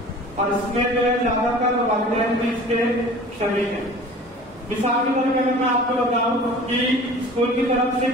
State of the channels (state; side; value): normal; both; correlation 0.43